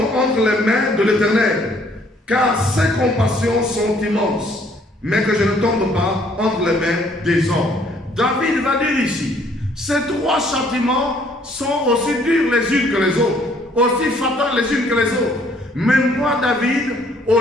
entre les mains de l'Éternel, car ses compassions sont immenses, mais que je ne tombe pas entre les mains des hommes. David va dire ici, ces 3 châtiments sont aussi durs les unes que les autres, aussi fatales les unes que les autres. Mais moi, David, au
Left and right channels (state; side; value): normal; both; correlation 0.63